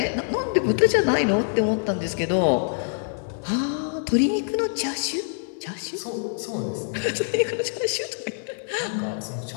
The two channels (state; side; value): silent; right; 62 dB below the other